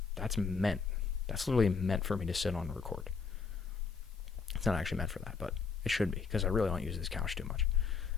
That's literally meant for me to sit on and record. It's not actually meant for that, but it should be, because I really don't use this couch too much.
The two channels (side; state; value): right; quieter; 5.2 dB